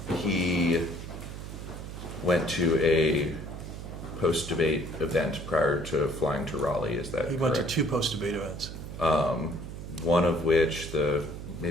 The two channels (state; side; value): noise; right; hum, 9 dB below the sound